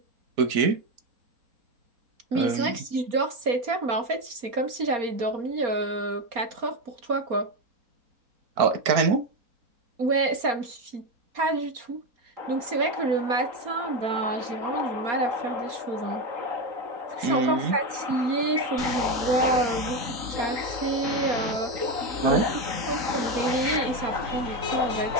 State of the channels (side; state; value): left; late; 4.3 ms